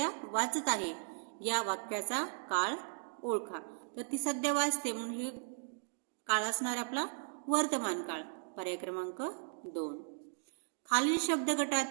वाचत आहे, या वाक्याचा काळ ओळखा. तर ती सध्या वाचते म्हणून हे काळ असणार आपला वर्तमान काळ, पर्याय क्रमांक 2. खालील शब्द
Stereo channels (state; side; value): silent; left; digital silence